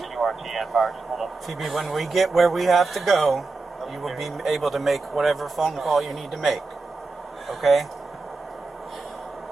Phoebe, when we get where we have to go, you will be able to make whatever phone call you need to make. Okay?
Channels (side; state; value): left; quieter; 3.7 dB